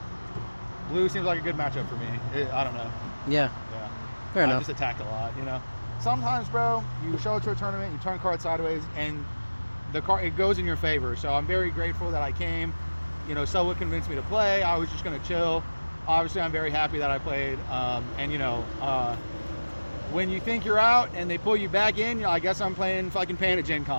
Blue seems like a good matchup for me. I don't know. Yeah. Yeah. Fair I enough. just attacked a lot, you know. Sometimes, bro, you show up to a tournament, you turn cards sideways, and the card it goes in your favor. So I'm very grateful that I came. You know, someone convinced me to play. I was just gonna chill. Obviously, I'm very happy that I played. And you know, when you think you're out and they pull you back in, you know, I guess I'm playing fucking Pan at Gen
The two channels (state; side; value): inverted; both; correlation -1.00